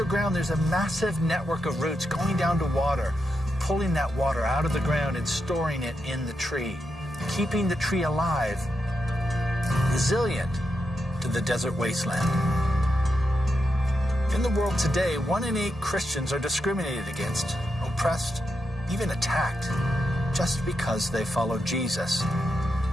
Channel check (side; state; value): both; normal; correlation 0.85